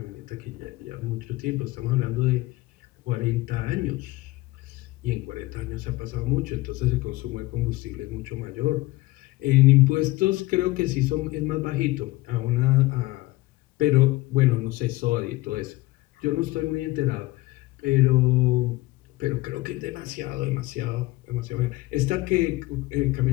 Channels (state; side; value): quieter; right; 19.6 dB